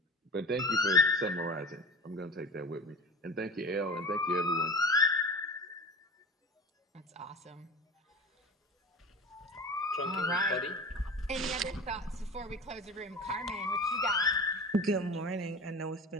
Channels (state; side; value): normal; both; correlation 0.35